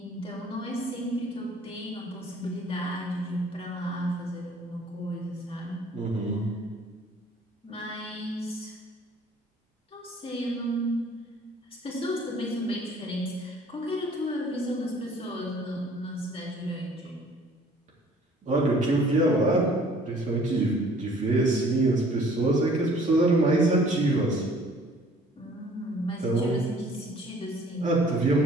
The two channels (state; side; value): normal; both; correlation 0.55